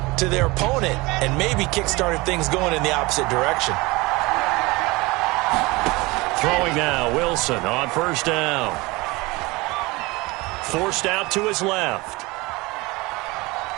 to their opponent and maybe kick-started things going in the opposite direction. Throwing now, Wilson on first down. Forced out to his left.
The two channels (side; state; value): left; quieter; 23.2 dB